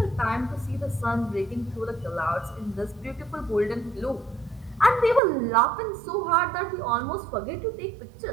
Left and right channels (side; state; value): left; drops out; at 5.2 s